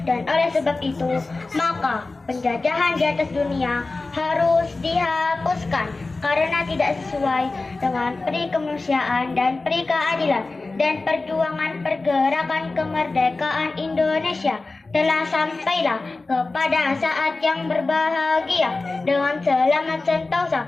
dan oleh sebab itu maka penjajahan di atas dunia harus dihapuskan karena tidak sesuai dengan peri kemanusiaan dan peri keadilan, dan perjuangan pergerakan kemerdekaan Indonesia telah sampailah kepada saat yang berbahagia dengan selamat sentosa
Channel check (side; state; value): right; quieter; 3.4 dB